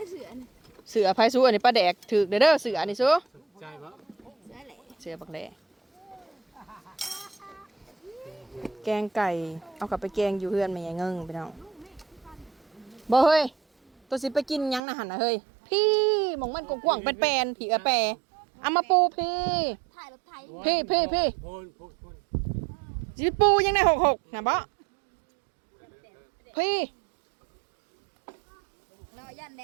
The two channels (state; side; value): drops out; left; at 14.8 s